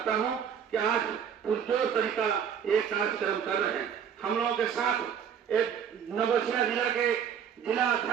हूं कि आज पुरजोर तरीका एक कार्यक्रम कर रहे हैं। हम लोगों के साथ एक नवसिया जिला के जिला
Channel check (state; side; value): quieter; left; 8.0 dB